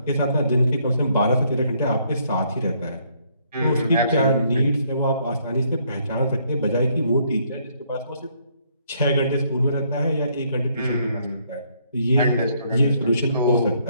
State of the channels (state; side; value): inverted; both; correlation -0.69